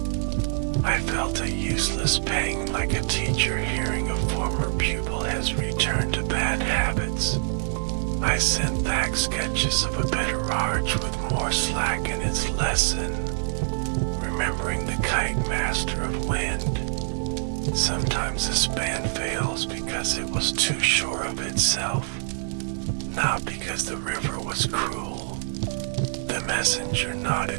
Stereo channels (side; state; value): left; silent; digital silence